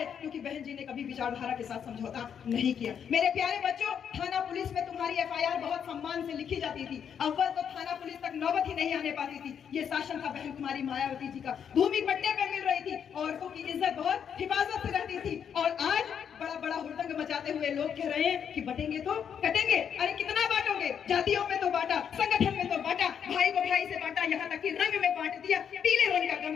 क्योंकि बहन जी ने कभी विचारधारा के साथ समझौता नहीं किया। मेरे प्यारे बच्चों, थाना पुलिस में तुम्हारी एफआईआर बहुत सम्मान से लिखी जाती थी, अव्वल तो थाना पुलिस तक नौबत ही नहीं आने पाती थी। ये शासन था बहन कुमारी मायावती जी का, भूमि पट्टे पे मिल रही थी, औरतों की इज्जत बहुत हिफाजत से रहती थी। और आज बड़ा बड़ा हुड़दंग मचाते हुए लोग कह रहे हैं कि बटेंगे तो कटेंगे। अरे कितना बांटोगे? जातियों में तो बांटा, संगठन में तो बांटा, भाई को भाई से बांटा, यहाँ तक कि रंग में बांट दिया। पीले रंग का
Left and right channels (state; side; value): quieter; right; 7.9 dB